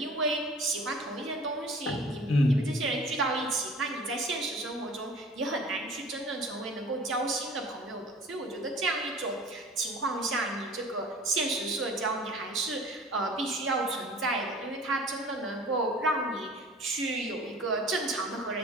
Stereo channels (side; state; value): both; normal; correlation 0.44